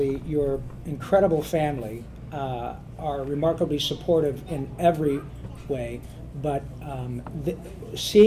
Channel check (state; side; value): identical; both; correlation 1.00